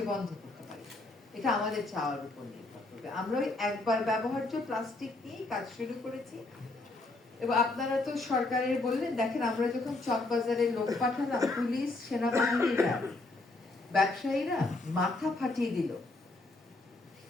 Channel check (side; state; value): right; quieter; 3.0 dB